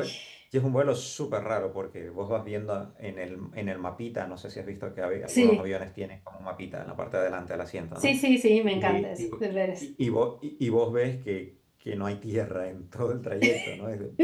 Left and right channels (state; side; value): identical; both; correlation 1.00